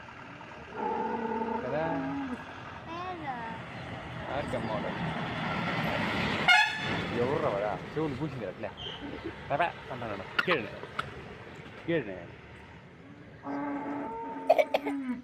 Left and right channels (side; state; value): both; identical; correlation 1.00